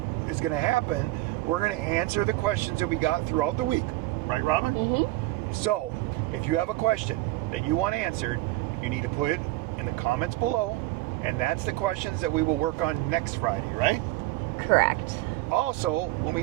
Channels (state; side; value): quieter; left; 18.9 dB